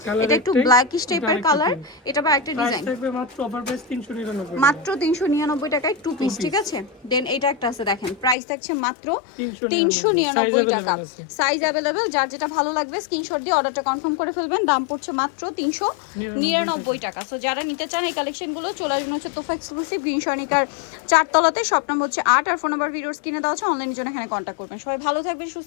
এটা একটু ব্ল্যাকিশ টাইপের কালার। এটা বা একটা ডিজাইন থাকবে মাত্র অফার প্রাইস 399। মাত্র 399 টাকায় টু পিস, ঠিক আছে। দেন এটা একটা আছে, দেখেন প্রাইস থাকছে মাত্র 399 টাকা। সাইজ अवेलेबल, যার যেটা ভালো লাগবে স্ক্রিনশট দিয়ে অর্ডারটা কনফার্ম করে ফেলবেন। দাম পড়ছে মাত্র 399 টাকা। সো যারা নিতে চান এই কালেকশনগুলো চলে আসবেন হচ্ছে তোফা এক্সক্লুসিভ গ্রিন সনিকার 4 তলাতে। শপ নাম্বার হচ্ছে 8 আর ফোন নাম্বার ভিডিওস কিনে দেওয়া আছে। অনলাইনের জন্য এখানে কন্ট্যাক্ট করবেন। সবাই ভালো থাকবেন, সুস্থ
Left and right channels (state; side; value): drops out; right; at 8.3 s